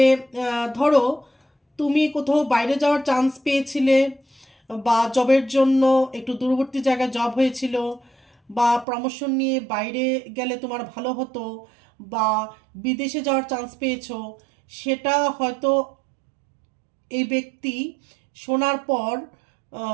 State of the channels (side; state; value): left; drops out; at 8.8 s